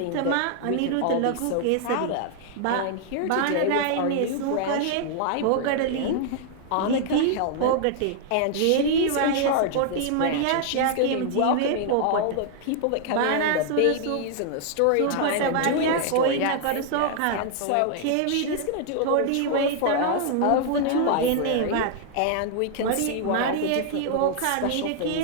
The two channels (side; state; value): both; different; correlation 0.00